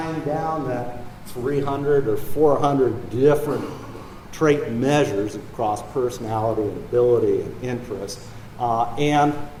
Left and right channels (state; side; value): identical; both; correlation 1.00